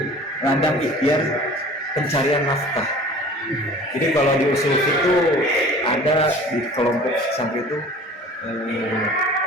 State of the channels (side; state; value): both; normal; correlation 0.44